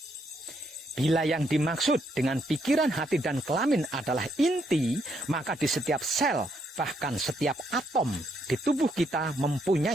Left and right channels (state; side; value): normal; both; correlation 0.74